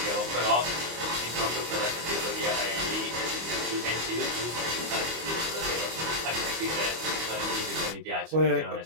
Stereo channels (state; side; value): late; left; 25 ms